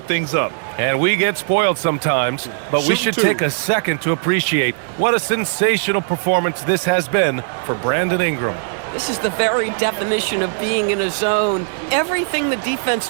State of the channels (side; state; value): left; silent; 67 dB below the other